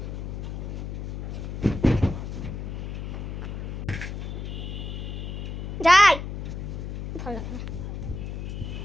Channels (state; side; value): noise; left; hum, 5 dB below the sound